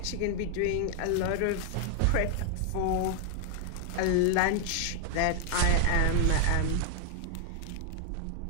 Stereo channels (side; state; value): both; different; correlation 0.00